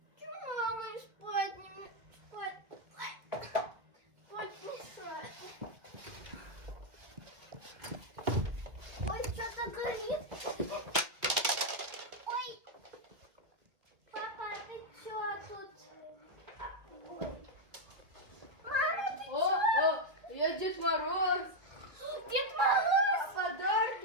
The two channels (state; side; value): late; left; 1.7 ms